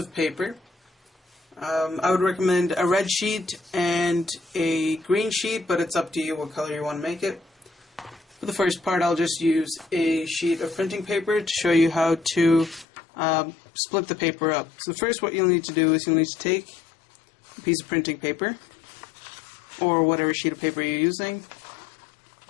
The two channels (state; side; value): drops out; right; at 12.9 s